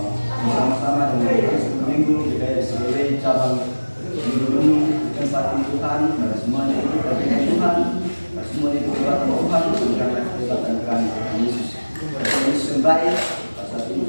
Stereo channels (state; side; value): inverted; both; correlation -1.00